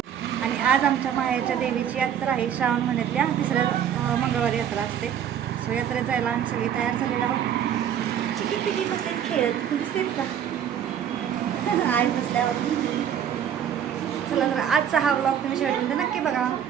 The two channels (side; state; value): left; quieter; 9.2 dB